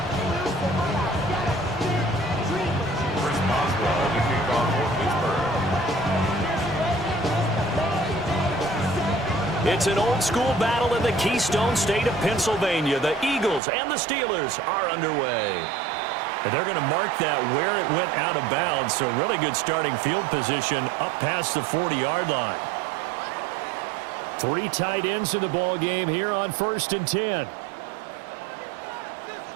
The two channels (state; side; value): drops out; left; at 13.6 s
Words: It's an old-school battle in the Keystone State of Pennsylvania. The Eagles and the Steelers are underway. And they're going to mark that where it went out of bounds, so really good starting field position up past the 40-yard line. 3 tight ends in the ball game here on 1st and 10.